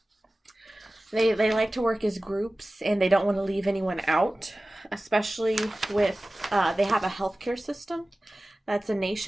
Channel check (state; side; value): normal; both; correlation 0.97